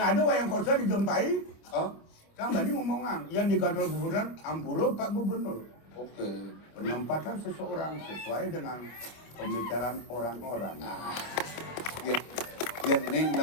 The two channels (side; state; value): right; late; 27 ms